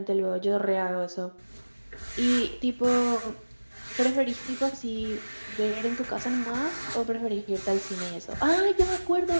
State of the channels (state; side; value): inverted; both; correlation -1.00